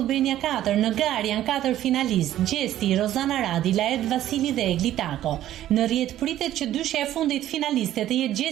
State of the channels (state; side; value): quieter; left; 12.8 dB